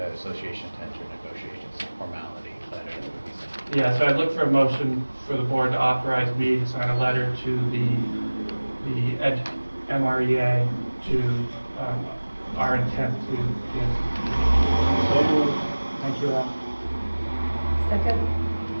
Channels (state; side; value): inverted; both; correlation -1.00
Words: association to enter negotiations formality letter. Yeah, so I'd look for a motion for the board to authorize me to sign a letter to the MREA to our intent to give. So moved. Thank you, Al. Second?